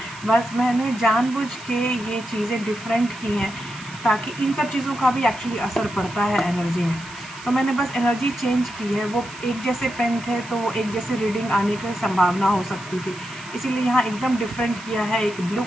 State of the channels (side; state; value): right; noise; hiss, 17 dB below the sound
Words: बस मैंने जानबूझ के ये चीज़ें डिफरेंट की हैं ताकि इन सब चीज़ों का भी एक्चुअली असर पड़ता है एनर्जी में। तो मैंने बस एनर्जी चेंज की है। वो एक जैसे पेन थे तो वो एक जैसे रीडिंग आने की संभावना हो सकती थी, इसीलिए यहाँ एकदम डिफरेंट किया है। एक ब्लू